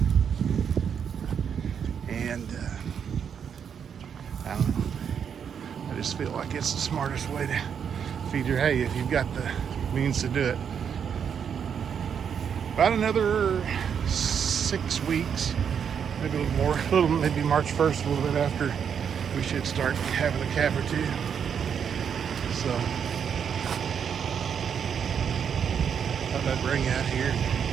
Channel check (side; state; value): left; quieter; 7.6 dB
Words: And I don't know. I just feel like it's the smartest way to feed your hay if you've got the means to do it. About another 6 weeks, maybe a little more, maybe March 1st, a little bit after, we should start having a calf or two. So, thought I'd bring you out here and